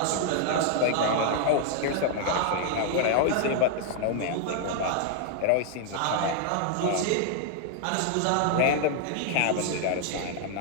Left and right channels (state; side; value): different; both; correlation 0.00